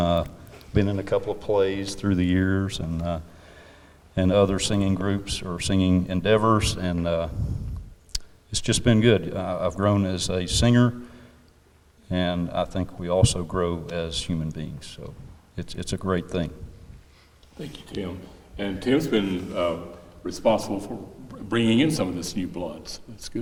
Been in a couple of plays through the years, and other singing groups or singing endeavors, and it's just been good. I've grown as a singer, and I think we also grow as human beings. So it's a great thing. Thank you, Tim. And Tim's been responsible for bringing in some of this new blood. So that's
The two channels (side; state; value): both; identical; correlation 1.00